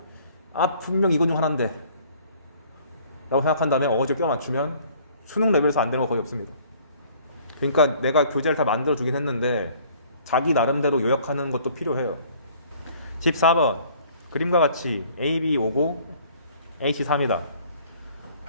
분명 이건 중 하나인데 라고 생각한 다음에 어거지로 껴 맞추면 수능 레벨에서 안 되는 거 거의 없습니다. 그러니까 내가 교재를 다 만들어 주긴 했는데 자기 나름대로 요약하는 것도 필요해요. 14번 그림과 같이 AB 5고 AC 3이다.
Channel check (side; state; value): both; inverted; correlation -0.56